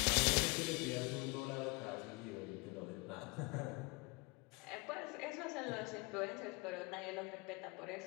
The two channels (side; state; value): right; quieter; 27.7 dB